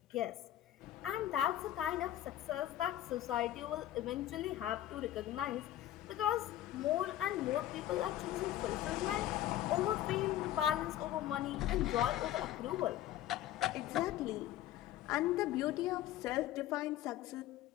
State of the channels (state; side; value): quieter; right; 13.2 dB